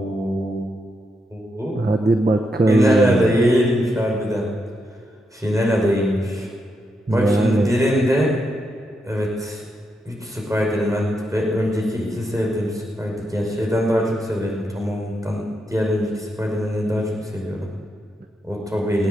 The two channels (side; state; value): both; normal; correlation 0.83